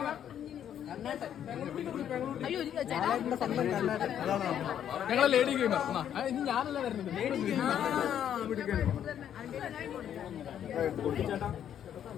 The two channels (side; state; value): right; quieter; 9.8 dB